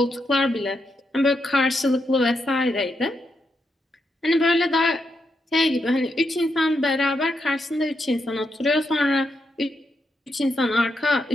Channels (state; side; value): normal; both; correlation 0.82